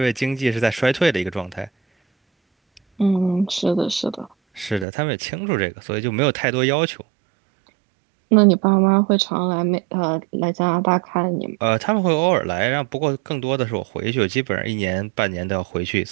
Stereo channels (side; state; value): left; drops out; at 4.9 s